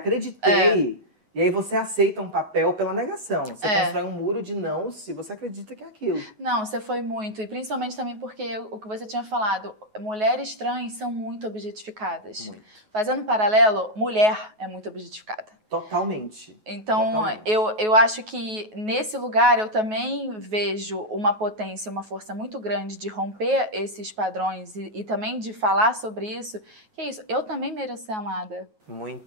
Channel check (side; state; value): left; late; 9.4 ms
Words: E aí você aceita um papel pela negação. Você constrói um muro de não se você acredita que é aquilo. Não, você foi muito. E principalmente também porque o que você tinha falado, mulheres trans são muito objetificadas. Muito. Fazendo um paralelo, mulher é muito objetificada. Totalmente. Então, eu acho que nesse lugar eu também vejo uma potência, uma força muito grande de romper esses padrões e também de falar sobre isso. Que é isso, eu também mereço ser amada.